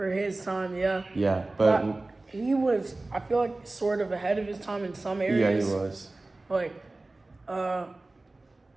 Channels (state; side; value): quieter; left; 3.0 dB